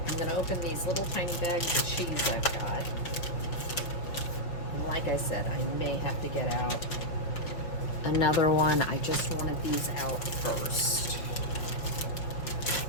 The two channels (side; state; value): right; late; 5.5 ms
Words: gonna open these little tiny bags of cheese I've got. And like I said, I may have to get out another one. I just wanted these out first.